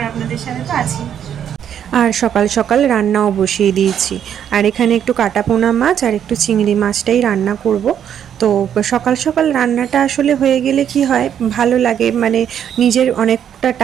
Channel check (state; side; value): quieter; left; 9.2 dB